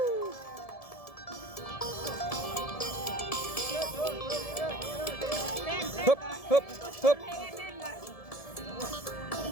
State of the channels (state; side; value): late; right; 1.7 ms